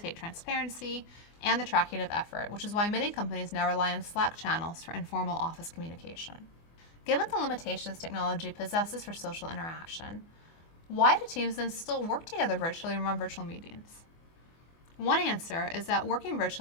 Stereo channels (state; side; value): late; right; 24 ms